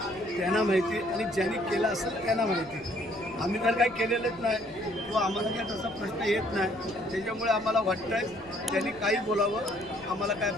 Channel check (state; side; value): noise; left; rumble, 22 dB below the sound